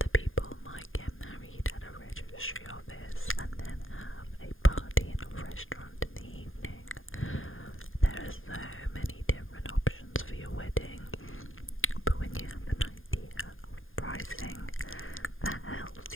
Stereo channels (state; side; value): late; right; 0.59 ms